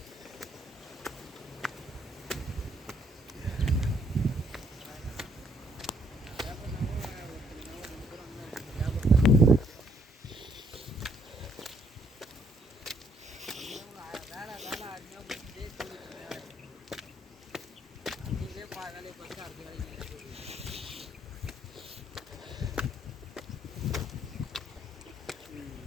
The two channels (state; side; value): normal; both; correlation 0.68